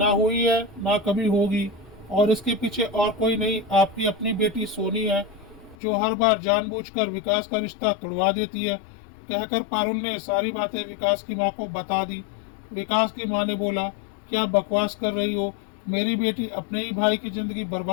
हुई है ना कभी होगी। और इसके पीछे और कोई नहीं, आपकी अपनी बेटी सोनी है, जो हर बार जानबूझकर विकास का रिश्ता तोड़वा देती है। कहकर पारुल ने सारी बातें विकास की माँ को बता दी। विकास की माँ ने बोला, क्या बकवास कर रही हो? मेरी बेटी अपने ही भाई की जिंदगी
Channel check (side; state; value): right; drops out; at 5.8 s